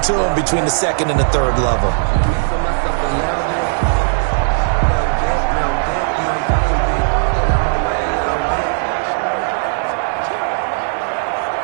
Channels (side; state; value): left; silent; digital silence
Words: to them between the 2nd and the 3rd level.